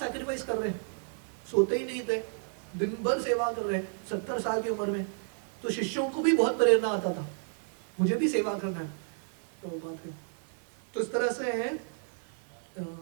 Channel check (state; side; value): silent; left; 57 dB below the other